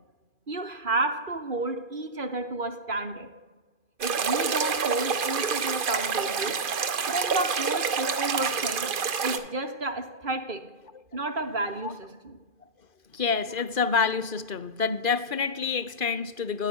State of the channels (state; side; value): late; left; 2.5 ms